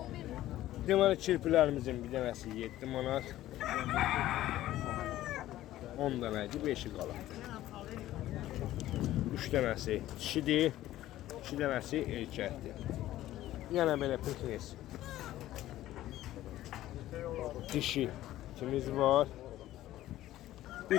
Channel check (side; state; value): right; quieter; 14.4 dB